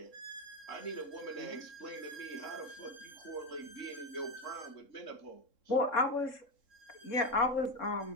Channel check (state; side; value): late; right; 3.7 ms